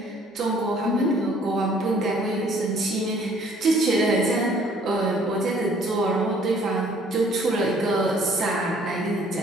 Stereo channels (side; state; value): both; normal; correlation 0.58